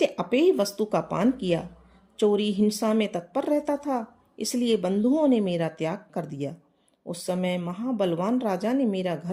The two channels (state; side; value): identical; both; correlation 1.00